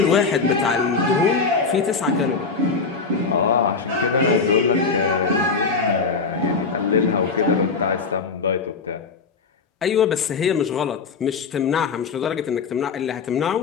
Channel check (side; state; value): right; quieter; 4.7 dB